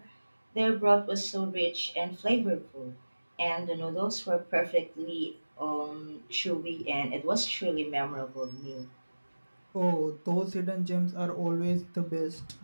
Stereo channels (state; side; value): inverted; both; correlation -1.00